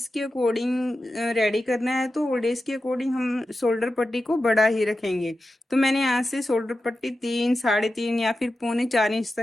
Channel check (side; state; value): both; normal; correlation 0.92